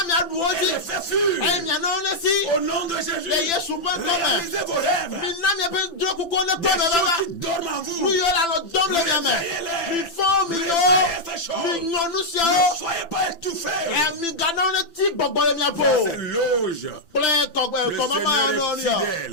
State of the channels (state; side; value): late; right; 5.9 ms